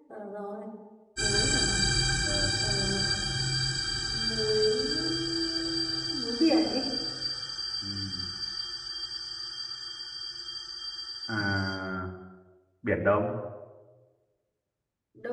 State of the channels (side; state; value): both; identical; correlation 1.00